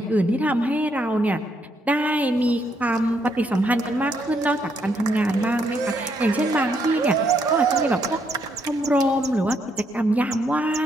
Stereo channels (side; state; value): both; normal; correlation 0.74